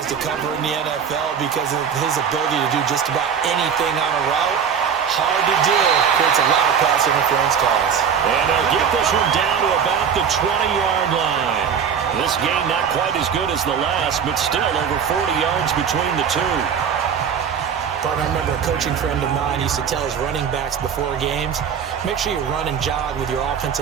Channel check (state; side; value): quieter; left; 7.4 dB